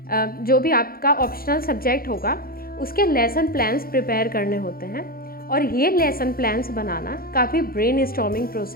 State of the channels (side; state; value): right; late; 0.43 ms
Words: जो भी आपका ऑप्शनल सब्जेक्ट होगा उसके लेसन प्लान्स प्रिपेयर करने होते हैं और ये लेसन प्लान्स बनाना काफ़ी ब्रेन स्टॉर्मिंग